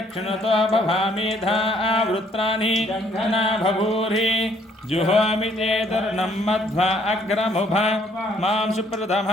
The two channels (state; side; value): normal; both; correlation 0.64